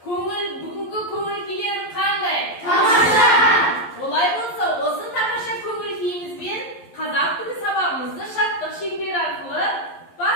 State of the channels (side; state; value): right; late; 11 ms